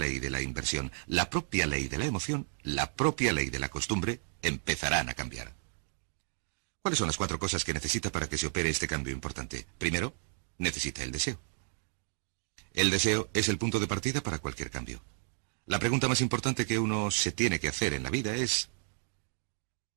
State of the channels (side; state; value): left; silent; 56 dB below the other